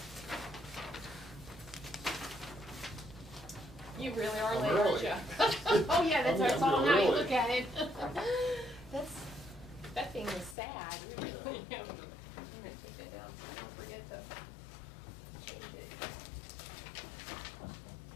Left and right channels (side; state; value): right; drops out; at 10.6 s